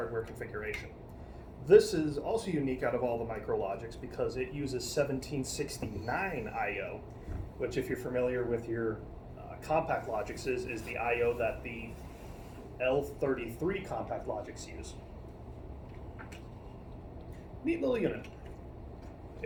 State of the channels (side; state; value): both; identical; correlation 1.00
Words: This is also unique out of all the micrologics because it uses 1769 I/O, which, if you're familiar with your Compact Logics, is the I/O that the L33 Compact Logics use. Neat little unit.